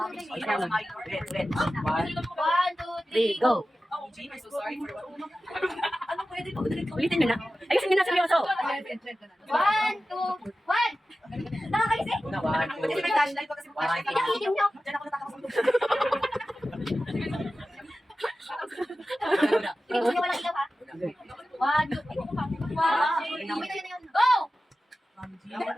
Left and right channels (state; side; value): normal; both; correlation 0.94